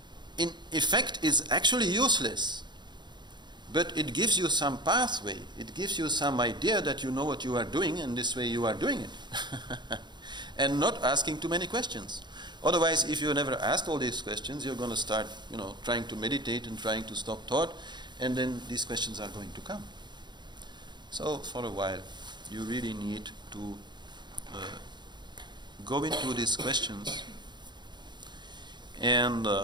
In effect, it's actually useless, but it gives you some pathway. It gives you some idea that you know what you are doing, and this way you are doing it. And not asking too many questions. Otherwise, if you never asked all these questions, you're going to start, trying to meditate and trying to stop thought, and then these questions are going to come. So, for a while, you really need to go into these questions and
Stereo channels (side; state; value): left; late; 0.21 ms